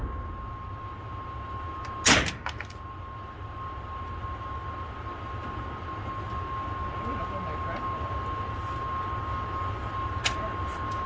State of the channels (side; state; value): both; identical; correlation 1.00